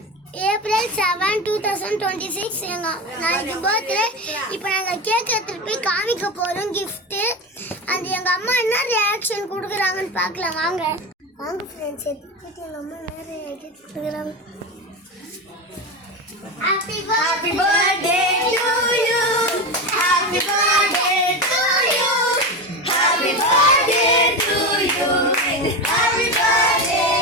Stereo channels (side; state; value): both; normal; correlation 0.20